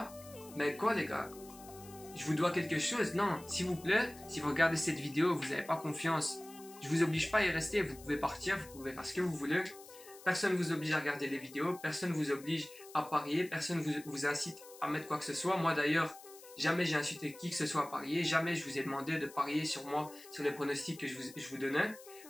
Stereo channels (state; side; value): noise; left; hiss, 19 dB below the sound